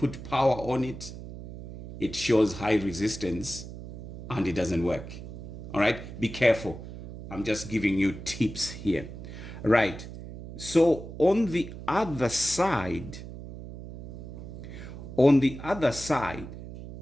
power on it, it shows high resistance and it doesn't work. All right, be careful. I'm just giving you tips here. Right. So on the other side,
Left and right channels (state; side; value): noise; right; hum, 12 dB below the sound